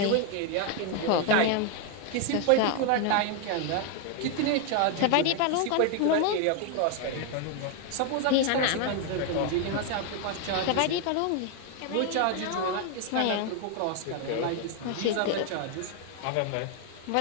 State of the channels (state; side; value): different; both; correlation 0.01